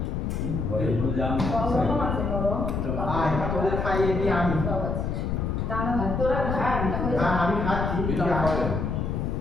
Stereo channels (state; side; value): noise; left; rumble, 1 dB below the sound